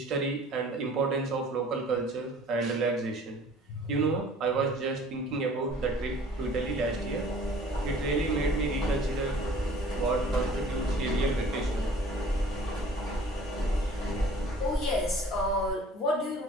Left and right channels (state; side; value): normal; both; correlation 0.50